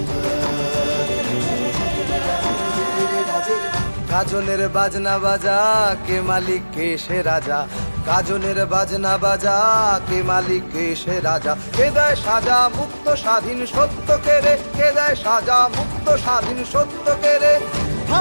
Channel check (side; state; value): both; inverted; correlation -1.00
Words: গাজনের বাজনা বাজা, কে মালিক কে সে রাজা। গাজনের বাজনা বাজা, কে মালিক কে সে রাজা। কে দেয় সাজা মুক্ত স্বাধীন সত্য কেড়ে, কে দেয় সাজা মুক্ত স্বাধীন সত্য কেড়ে। হা